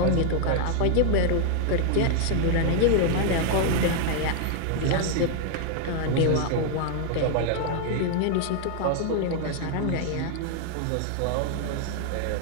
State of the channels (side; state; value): both; different; correlation 0.00